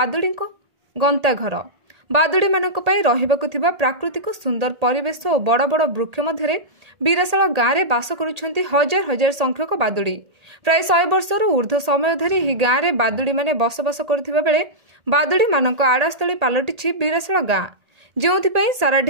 गंता घर। बादुड़ी मानक पई रहिबाकु थिबा प्राकृतिक सुंदर परिवेश और बड़ बड़ वृक्ष मध्य बीराशाल गाँव में बास करुछंती हजार हजार संख्यक बादुड़ी। प्राय 100 वर्षर ऊर्ध्व समय धरी ही गाँव में बादुड़ी माने बसवास करुथिबा बेले बादुड़ी मानक आड़ास्थली पलटि बीराशाल गाँ, जोंथिपई सारा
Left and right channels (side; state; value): left; late; 1.8 ms